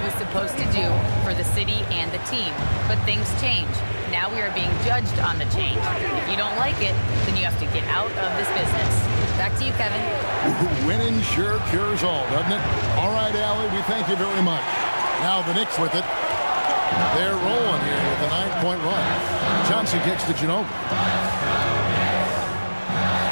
was supposed to do for the city and the team. But things change. Now we are being judged on the change. If you don't like it, then you have to get out of this business. Back to you, Kevin. Winning sure cures all, doesn't it? All right, Allie, we thank you very much. Now the Knicks with it. They're rolling here with a 9-point run. Johnson kicks to Ginobili.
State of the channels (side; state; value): both; inverted; correlation -1.00